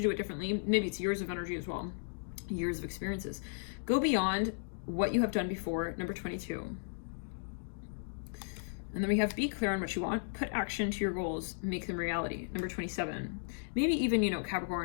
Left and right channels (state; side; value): silent; right; digital silence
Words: do it differently. Maybe it's years of energy as well, years of experiences. Go beyond what you have done before, number 22. And then we have be clear on what you want, put action to your goals, make them reality, number 27. Maybe even, you know,